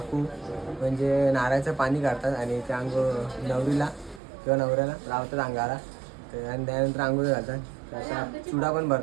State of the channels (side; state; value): left; drops out; at 4.2 s